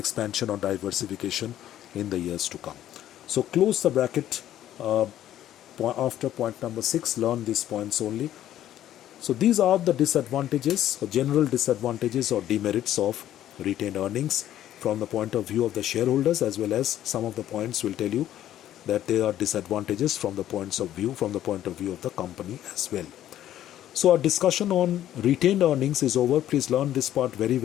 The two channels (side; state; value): right; quieter; 12.1 dB